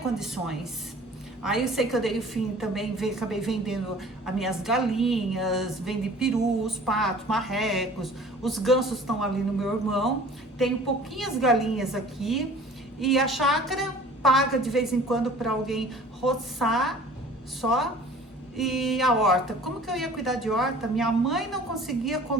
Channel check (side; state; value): both; normal; correlation 0.47